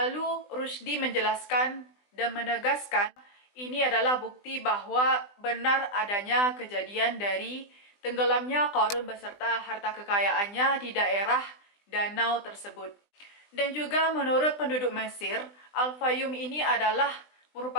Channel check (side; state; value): right; late; 20 ms